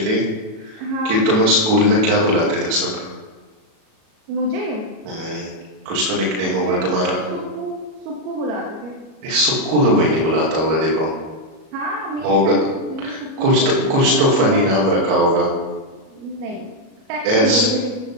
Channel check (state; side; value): late; left; 37 ms